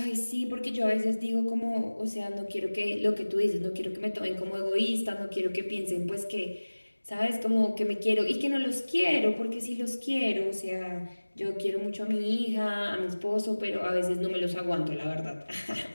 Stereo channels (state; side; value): inverted; both; correlation -1.00